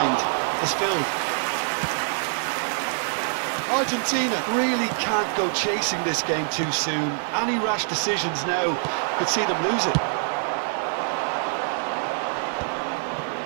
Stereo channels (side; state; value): left; silent; 62 dB below the other